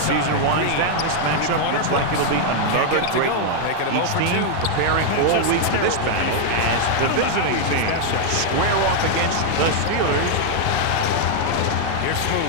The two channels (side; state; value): both; different; correlation 0.00